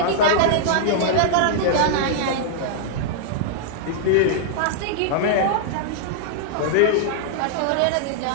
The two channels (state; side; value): different; both; correlation -0.01